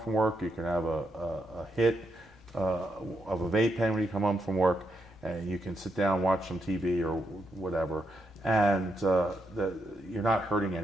work. You can have a hit of a vape pen when you come home from work, and you can sit down, watch some TV or whatever, and you're not hurting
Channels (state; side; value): normal; both; correlation 0.80